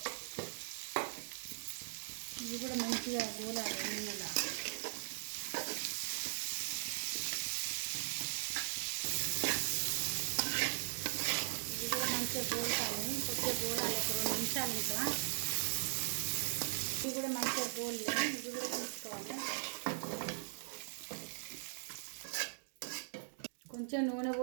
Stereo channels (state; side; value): silent; left; digital silence